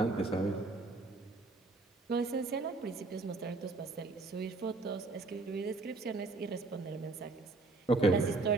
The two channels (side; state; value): left; quieter; 3.4 dB